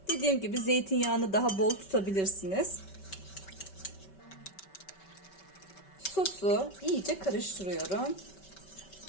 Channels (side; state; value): right; late; 5.2 ms